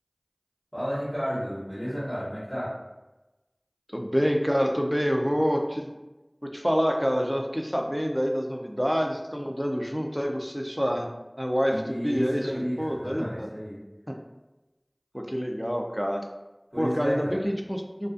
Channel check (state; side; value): identical; both; correlation 1.00